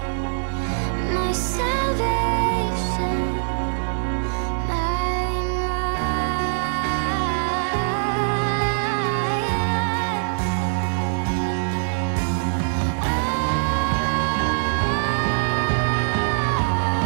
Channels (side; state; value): left; silent; digital silence